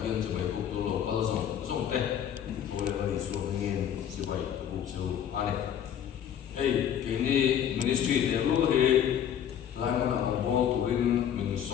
天就為國度老闆種的，我哋嗰啲說明就為國就安尼，給你 ministry 的路去。來我那紅波度邊民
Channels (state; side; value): quieter; right; 9.5 dB